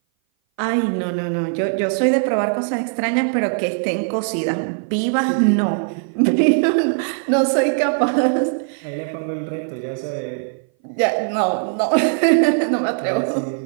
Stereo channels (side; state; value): left; silent; 58 dB below the other